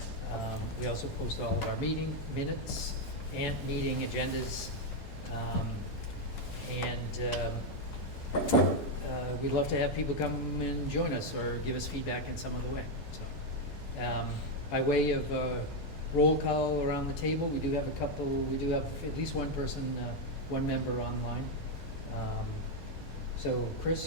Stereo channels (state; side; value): normal; both; correlation 0.04